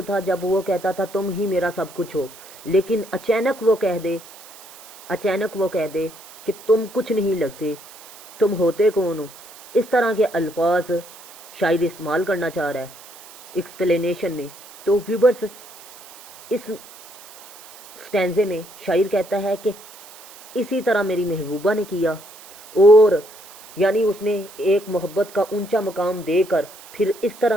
था जब वो कहता था तुम ही मेरा सब कुछ हो, लेकिन अचानक वो कह दे कि तुम कुछ नहीं लगते, तुम होते कौन हो। इस तरह के अल्फाज शायद इस्तेमाल करना चाह रहा है। एक्सप्लेनेशन में। तो व्यूवर्स, इस स्टैंजे में शायर कहता है कि इसी तरह मेरी महबूबा ने किया, और यानी उसने एक मोहब्बत का ऊंचा मकाम देकर फिर इस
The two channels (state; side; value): noise; right; hiss, 20 dB below the sound